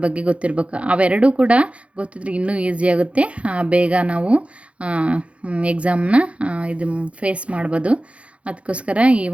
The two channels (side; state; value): left; late; 0.062 ms